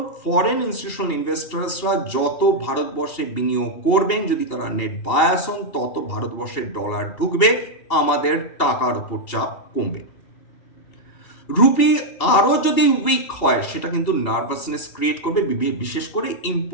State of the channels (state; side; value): late; right; 2.8 ms